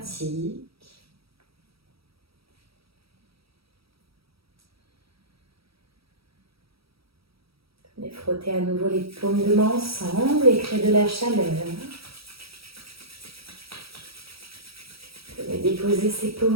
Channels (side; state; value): left; late; 0.76 ms